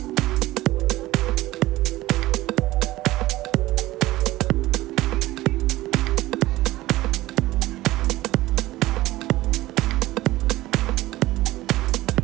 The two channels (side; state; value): left; quieter; 17.4 dB